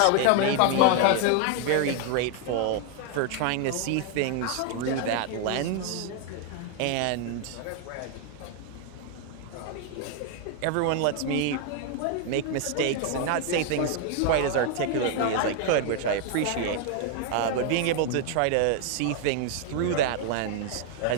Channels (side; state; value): both; different; correlation 0.00